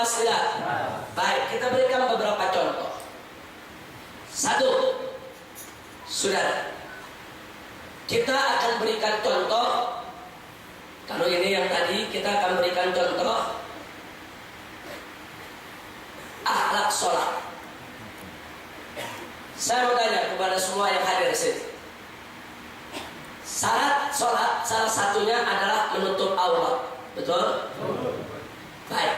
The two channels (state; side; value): identical; both; correlation 1.00